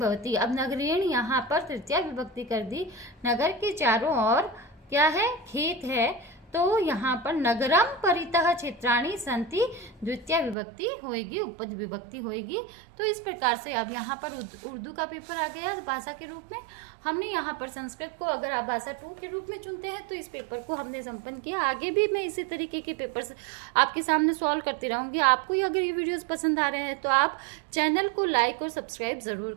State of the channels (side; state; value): left; drops out; at 10.6 s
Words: अब नगरेण यहाँ पर तृतीय विभक्ति कर दी। नगर के चारों ओर क्या है? खेत है, तो यहाँ पर नगरम परितः क्षेत्राणि सन्ति द्वितीय विभक्ति होएगी, उपपद विभक्ति होएगी। तो इस प्रकार से अब यहाँ पर उर्दू का पेपर आ गया भाषा के रूप में। हमने यहाँ पर संस्कृत को अगर आप भाषा 2 के रूप में चुनते हैं तो इस पेपर को हमने संपन्न किया। आगे भी मैं इसी तरीके के पेपर्स आपके सामने सॉल्व करती रहूँगी। आपको अगर ये वीडियोस पसंद आ रहे हैं तो आप चैनल को लाइक और सब्सक्राइब